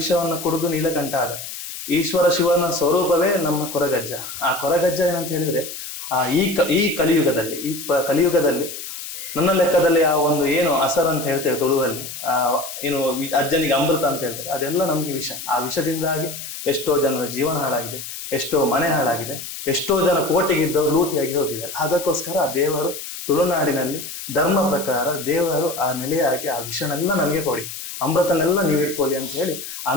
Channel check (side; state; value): left; noise; hiss, 9 dB below the sound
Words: ಕುಡಿದು ನೀಲಕಂಠ ಆದ. ಈಶ್ವರ ಶಿವನ ಸ್ವರೂಪವೇ ನಮ್ಮ ಕೊರಗಜ್ಜ. ಆ ಕೊರಗಜ್ಜ ಏನಂತ ಹೇಳಿದ್ರೆ, ಈ ಕಲಿಯುಗದಲ್ಲಿ ನನ್ನ ಲೆಕ್ಕದಲ್ಲಿ ಆ ಒಂದು ಏನು ಅಸರ್ ಅಂತ ಹೇಳ್ತೇವೆ ತುಳುವಲ್ಲಿ, ಏನು ಅಜ್ಜನಿಗೆ ಅಮೃತ ಅಂತ ಹೇಳ್ತಾರೆ, ಅದೆಲ್ಲ ನಮ್ಗೆ ವಿಷ. ಆ ವಿಷದಿಂದಾಗಿ ಎಷ್ಟೋ ಜನರ ಜೀವನ ಹಾಳಾಗಿದೆ, ಎಷ್ಟೋ ಮನೆ ಹಾಳಾಗಿದೆ, ಎಷ್ಟೋ ಜನ ಕೋಟೆಗಿದ್ದವರು ಲೂಟಿಯಾಗಿ ಹೋಗಿದ್ದಾರೆ. ಅದಕ್ಕೋಸ್ಕರ ಆ ದೇವರು ತುಳುನಾಡಿನಲ್ಲಿ ಧರ್ಮ ಪ್ರಕಾರ ದೇವರು ಆ ನೆಲೆಯಾಗಿ ಆ ವಿಷನೆಲ್ಲ ನನಗೆ ಕೊಡಿ, ಅಮೃತನೆಲ್ಲ ನೀವು ಇಟ್ಕೊಳ್ಳಿ ಅಂತ ಹೇಳಿ